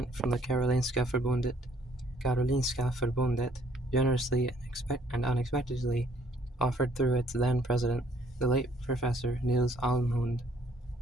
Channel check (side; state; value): both; normal; correlation 0.64